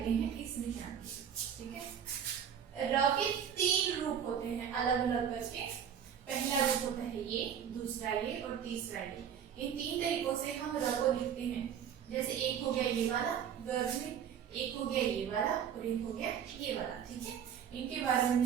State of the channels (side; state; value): left; quieter; 8.5 dB